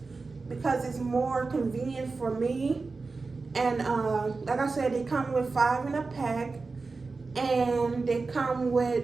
because it's more convenient for me. And like I said, they come with 5 in a pack, and they come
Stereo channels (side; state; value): left; quieter; 4.0 dB